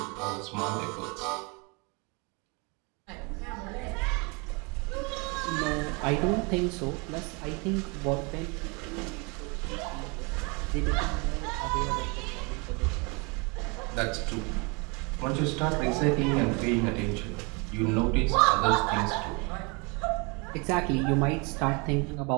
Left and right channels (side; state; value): left; quieter; 30.6 dB